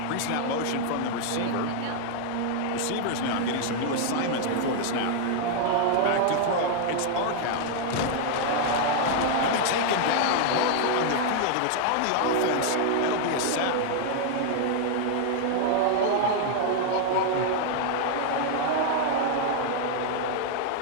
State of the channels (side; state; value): both; different; correlation 0.00